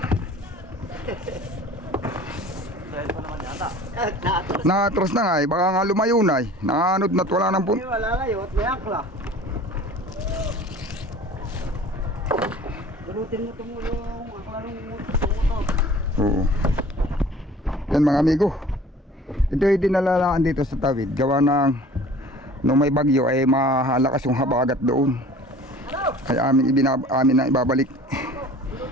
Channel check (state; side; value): normal; both; correlation 0.46